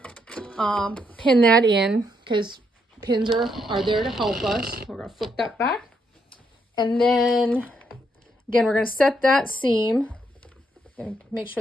pin that in because pins are there to help us. We're going to flip that back. And then, again, we're going to set that seam. Going to make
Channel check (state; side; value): normal; both; correlation 0.76